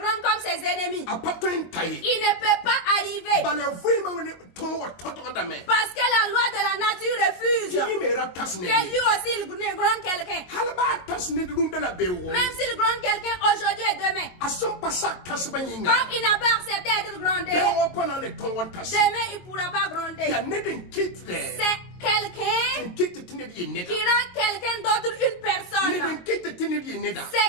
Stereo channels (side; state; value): right; late; 22 ms